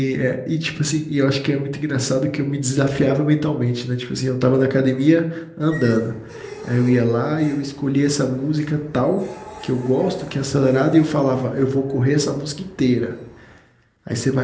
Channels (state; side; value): identical; both; correlation 1.00